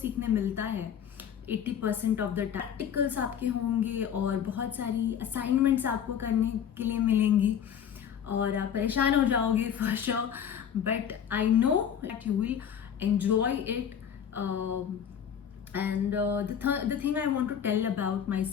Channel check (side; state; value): right; quieter; 8.6 dB